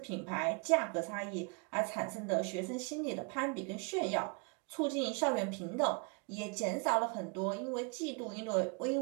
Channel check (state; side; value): quieter; left; 35.3 dB